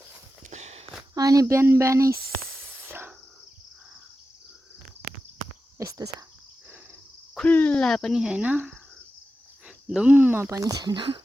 अनि बिहान बिहानै यस्तो छ, खुल्ला पनि छैन, धुम्म पनि छैन,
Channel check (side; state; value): both; normal; correlation 0.92